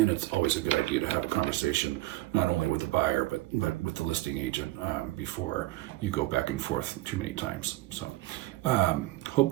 it's always a good idea to have a conversation not only with the buyer but with the listing agent before you go back and forth too many times. So hope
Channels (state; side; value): quieter; left; 18.4 dB